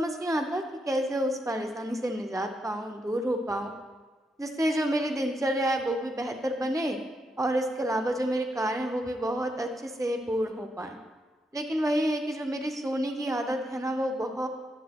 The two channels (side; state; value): both; normal; correlation 0.81